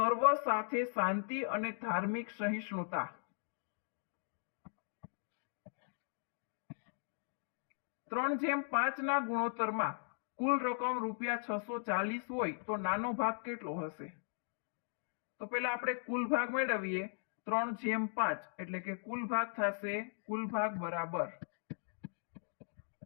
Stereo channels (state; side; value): silent; right; digital silence